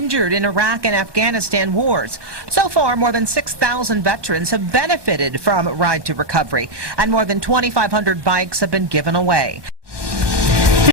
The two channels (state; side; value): late; left; 1.2 ms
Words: in Iraq and Afghanistan wars. So far, more than 6,000 veterans have benefited from Ride to Recovery, and more than 2,500 bikes have been given away.